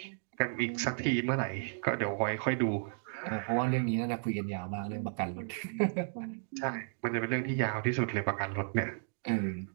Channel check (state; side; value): silent; left; digital silence